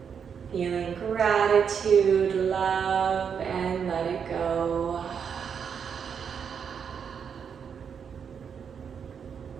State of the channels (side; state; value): left; quieter; 7.1 dB